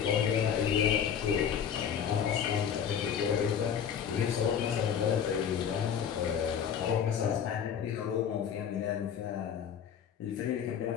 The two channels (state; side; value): quieter; right; 8.2 dB